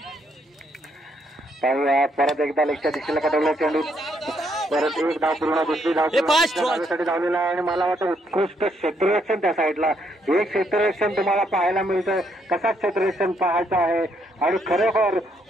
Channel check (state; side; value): normal; both; correlation 0.74